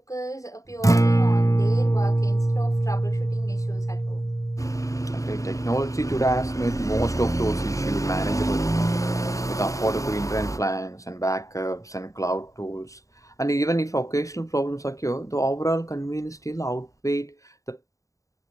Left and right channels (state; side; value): late; right; 0.16 ms